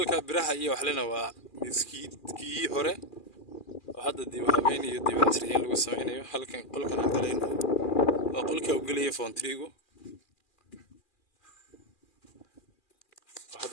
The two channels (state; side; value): late; right; 2.4 ms